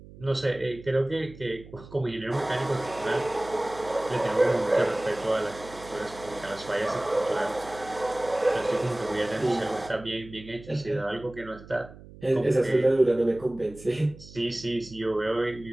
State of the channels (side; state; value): right; noise; hum, 18 dB below the sound